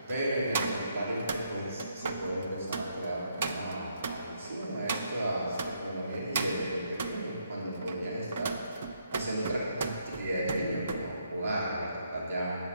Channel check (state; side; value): inverted; both; correlation -0.74